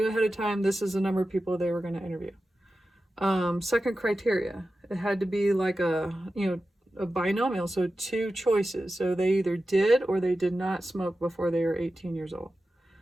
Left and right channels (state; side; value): normal; both; correlation 0.93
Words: ahead of time, this is the number of people they were going to interview. Second criteria, it had to be like a binomial, so 2 choices. So they either did or they did not smoke before they were 18 years old.